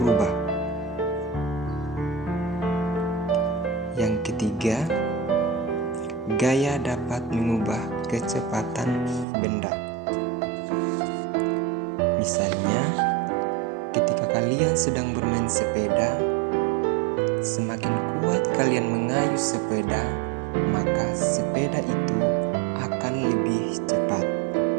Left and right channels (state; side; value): drops out; left; at 9.2 s